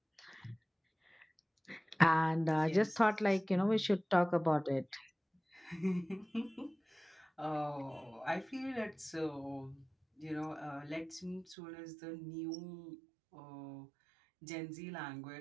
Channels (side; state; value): left; drops out; at 11.6 s